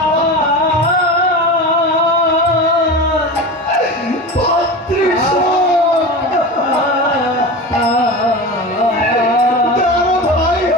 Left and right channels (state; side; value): normal; both; correlation 0.28